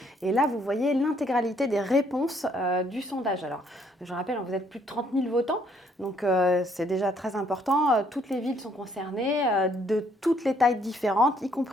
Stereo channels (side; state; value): both; normal; correlation 0.67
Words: et là vous voyez l'intégralité des réponses du sondage. Alors je rappelle, vous êtes plus de 30 000 votants, donc c'est déjà très important. Toutes les villes sont concernées, de toutes les tailles différentes, y